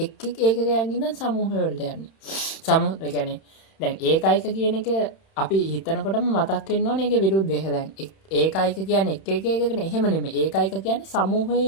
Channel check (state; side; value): late; right; 31 ms